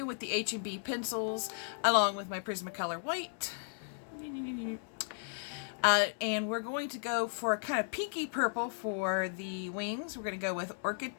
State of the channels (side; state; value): right; silent; 54 dB below the other